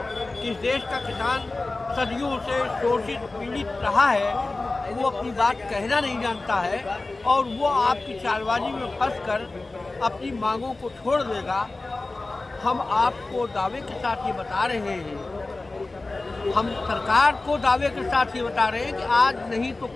कि इस देश का किसान सदियों से शोषित पीड़ित रहा है, वो अपनी बात कहना नहीं जानता है और वो आपकी चालबाजी में फंसकर अपनी मांगों को छोड़ देगा। हम आपको दावे के साथ ये बता रहे हैं, हम सरकार को दावे के साथ ये बता रहे हैं कि आज नहीं तो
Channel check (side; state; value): right; quieter; 3.2 dB